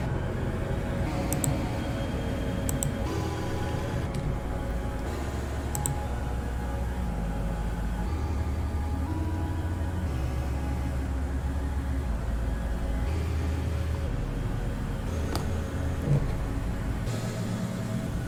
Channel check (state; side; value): identical; both; correlation 1.00